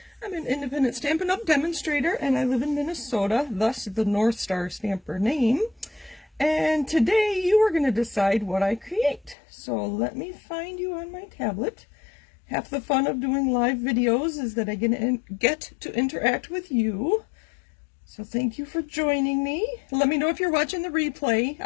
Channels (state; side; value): drops out; right; at 9.3 s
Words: I'm an independent Stampin' Up! Demonstrator and I live in Minnesota, thus the North Star Stamper name. And today you are going to decide what I create. So let me find you on my tablet. Half the fun of doing live videos is that I get to interact with you. So thank you for joining me. Let me know if you're watching the replay.